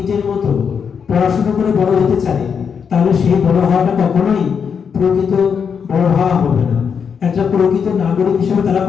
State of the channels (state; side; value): quieter; right; 6.7 dB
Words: মতো পড়াশোনা করে বড় হতে চাই তাহলে সেই বড় হওয়াটা কখনোই প্রকৃত বড় হওয়া হবে না। একটা প্রকৃত নাগরিক হিসেবে তারা